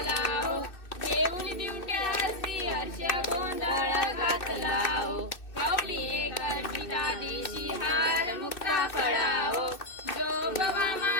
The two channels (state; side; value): late; right; 2.6 ms